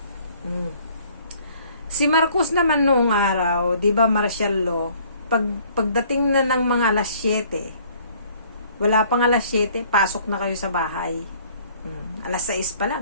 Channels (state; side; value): inverted; both; correlation -0.57